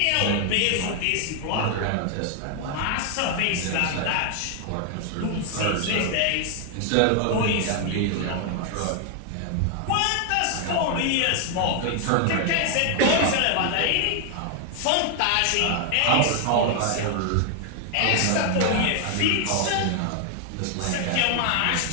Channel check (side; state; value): both; different; correlation 0.00